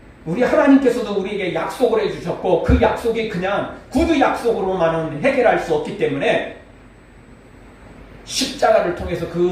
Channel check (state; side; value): identical; both; correlation 1.00